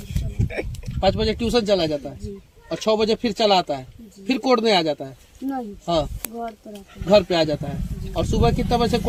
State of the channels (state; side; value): identical; both; correlation 1.00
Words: 5 बजे ट्यूशन चला जाता है और 6 बजे फिर चला आता है, फिर कोड़ने आ जाता है। नहीं, हाँ, घर पे आ जाता है। और सुबह कितना बजे